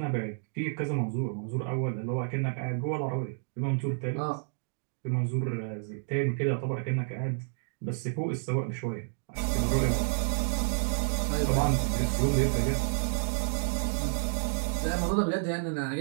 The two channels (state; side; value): silent; left; digital silence